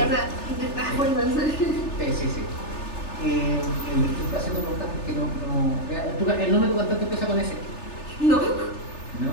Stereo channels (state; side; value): late; right; 3.4 ms